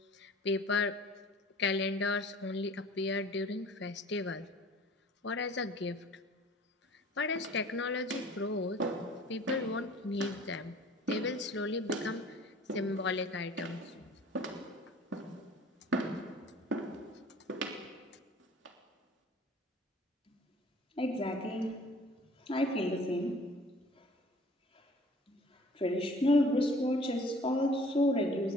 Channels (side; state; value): both; normal; correlation 0.49